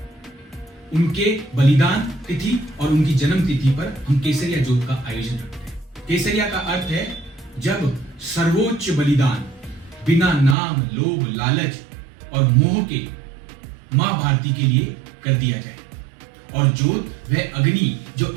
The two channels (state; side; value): drops out; left; at 10.6 s